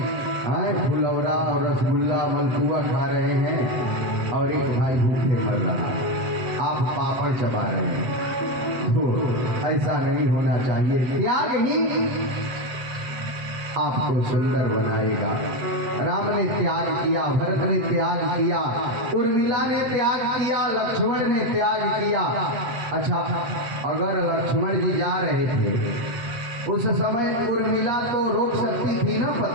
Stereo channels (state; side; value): late; left; 7.9 ms